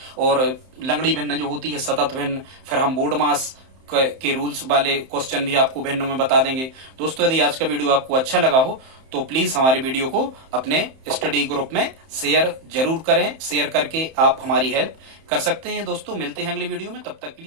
और लंगड़ी भिन्न जो होती है सतत भिन्न, फिर हम बोर्ड मास के रूल्स वाले क्वेश्चन भी आपको भिन्नों में बता देंगे। दोस्तों यदि आज का वीडियो आपको अच्छा लगा हो तो प्लीज हमारे वीडियो को अपने स्टडी ग्रुप में शेयर जरूर करें। शेयर करके आप हमारी हेल्प कर सकते हैं। दोस्तों मिलते हैं अगली वीडियो में, तब तक के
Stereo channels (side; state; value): left; late; 31 ms